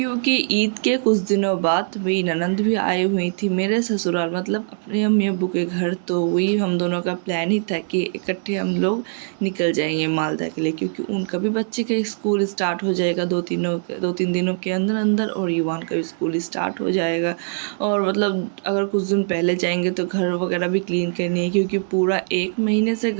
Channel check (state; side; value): silent; left; digital silence